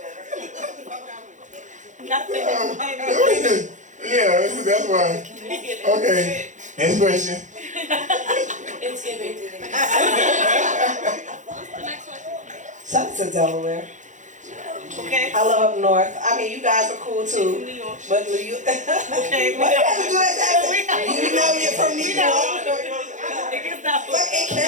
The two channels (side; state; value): left; late; 0.36 ms